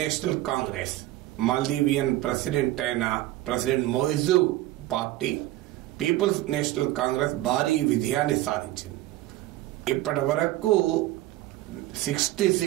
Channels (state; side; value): quieter; left; 16.2 dB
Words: Congress Maldivian President అయిన President Muizzu party People's National Congress భారీ విజయాన్ని సాధించింది. ఇప్పటి వరకు